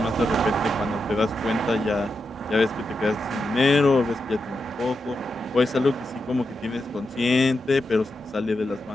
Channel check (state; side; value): normal; both; correlation 0.87